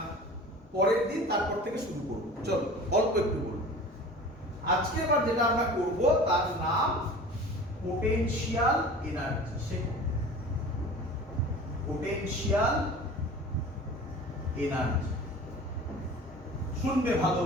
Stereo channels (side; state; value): both; normal; correlation 0.40